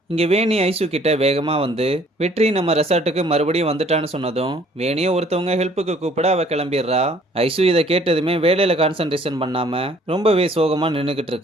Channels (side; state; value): both; normal; correlation 0.58